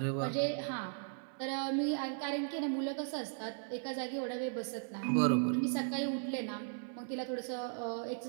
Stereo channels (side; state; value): left; silent; 53 dB below the other